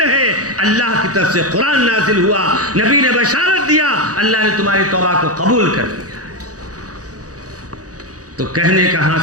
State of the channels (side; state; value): left; late; 0.67 ms